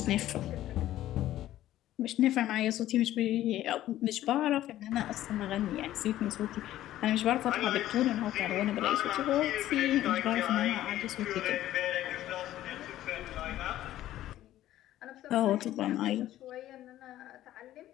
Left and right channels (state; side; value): quieter; right; 13.7 dB